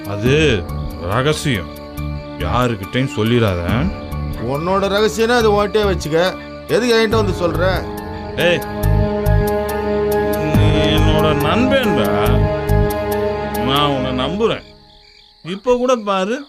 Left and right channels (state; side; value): identical; both; correlation 1.00